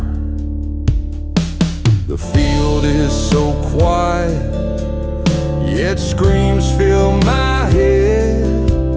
The field is so quiet, yet screams fill my head.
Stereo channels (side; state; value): both; identical; correlation 1.00